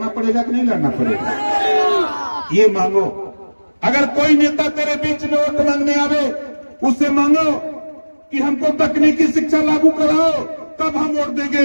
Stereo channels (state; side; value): inverted; both; correlation -1.00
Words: पड़ेगा कि नहीं लड़ना पड़ेगा? ये मांगो। अगर कोई नेता तेरे बीच में वोट मांगने आवे, उससे मांगो कि हमको तकनीकी शिक्षा लागू कराओ, तब हम वोट